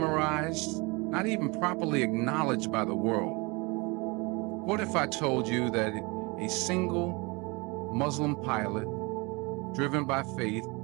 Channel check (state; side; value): quieter; left; 27.3 dB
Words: not even properly acknowledged by the world? What if I told you that a single Muslim pilot, driven by faith,